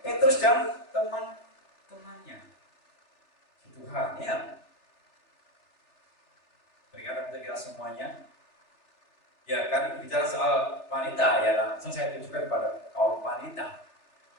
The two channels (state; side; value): late; right; 3.4 ms